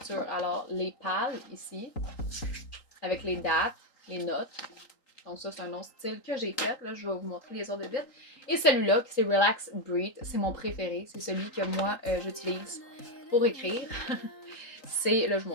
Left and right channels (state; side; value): late; right; 3.8 ms